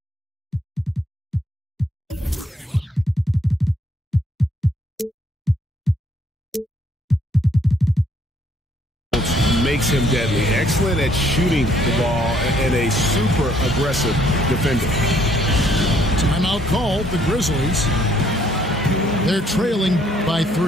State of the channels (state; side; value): normal; both; correlation 0.66